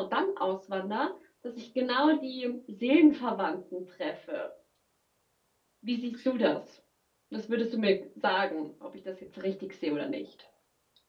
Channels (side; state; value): both; identical; correlation 1.00